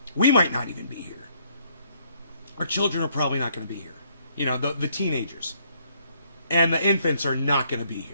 We might not even be here. Our children are probably not going to be here. The teenagers. And the infants are not going to be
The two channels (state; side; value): inverted; both; correlation -0.68